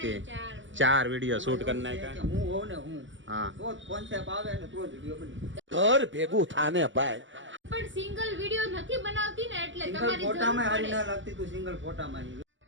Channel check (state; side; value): late; left; 0.55 ms